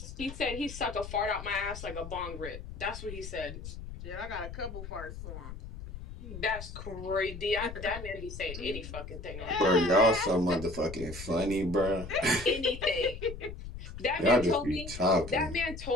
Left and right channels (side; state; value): left; noise; rumble, 10 dB below the sound